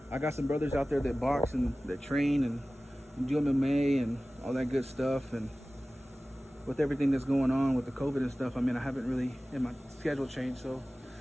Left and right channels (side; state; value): both; normal; correlation 0.97